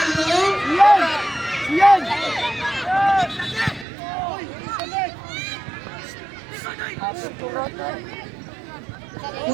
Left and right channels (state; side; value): drops out; left; at 3.9 s